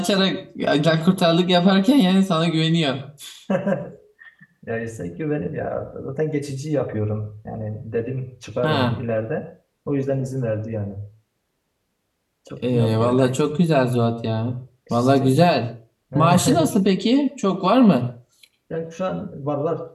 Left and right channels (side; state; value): both; identical; correlation 1.00